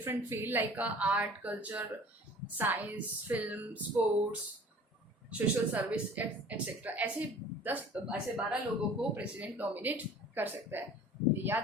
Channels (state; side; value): normal; both; correlation 0.46